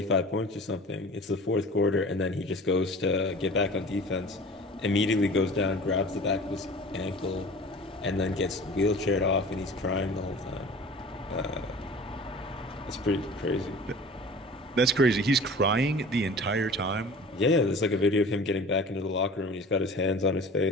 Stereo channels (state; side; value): normal; both; correlation 0.41